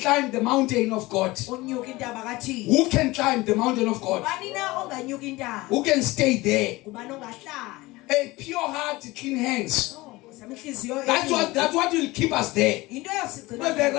the mountain of God. Unyuka intaba kaThixo. Who can climb the mountain of God? Ubani na onganyuka intaba? Who can stay there? Ubani ongahlala? A pure heart, clean hands. Samihliziyo. That's what will keep us there. Into But the yosigcina.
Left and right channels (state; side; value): quieter; right; 20.7 dB